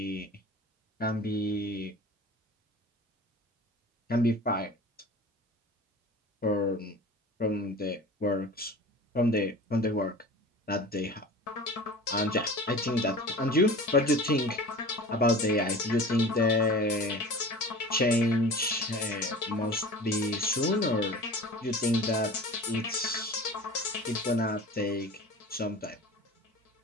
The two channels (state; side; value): normal; both; correlation 0.39